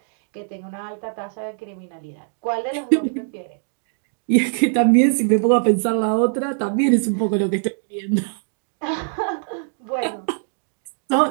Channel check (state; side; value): silent; left; digital silence